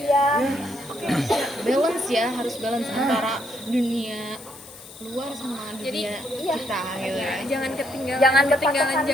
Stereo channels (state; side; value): noise; left; hiss, 18 dB below the sound